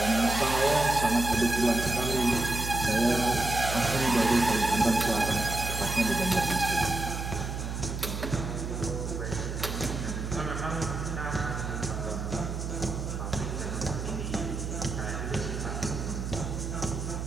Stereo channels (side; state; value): right; noise; hum, 4 dB below the sound